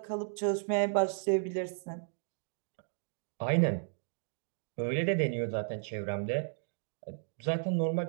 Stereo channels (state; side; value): silent; left; digital silence